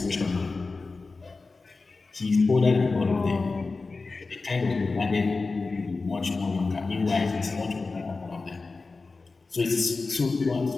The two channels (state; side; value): quieter; right; 3.9 dB